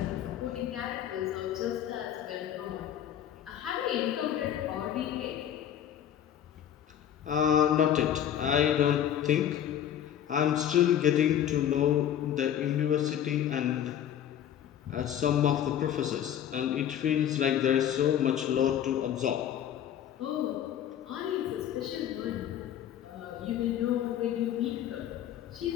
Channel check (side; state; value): right; quieter; 10.2 dB